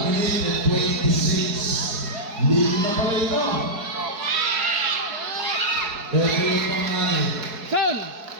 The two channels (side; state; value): left; late; 4.7 ms